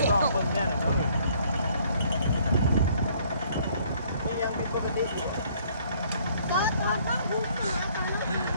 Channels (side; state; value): both; inverted; correlation -0.61